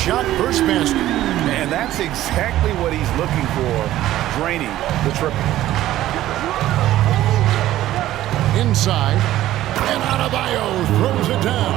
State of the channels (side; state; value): left; quieter; 14.2 dB